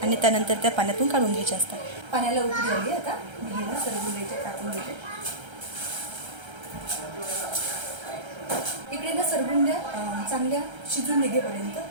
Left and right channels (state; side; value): late; left; 1.3 ms